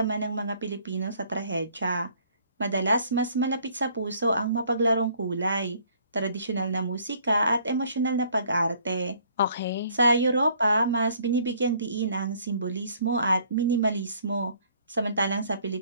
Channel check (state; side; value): inverted; both; correlation -0.60